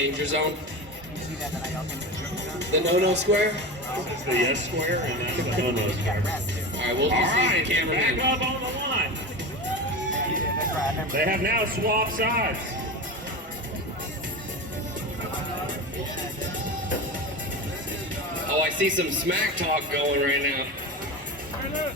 zone? The no-no square? It's the yes square and that's the no-no square. Alright, we'll All just use right, the camera back in. up on the line. They have now swapped sides. Oh, I see some smack talk going right now.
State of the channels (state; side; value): normal; both; correlation 0.26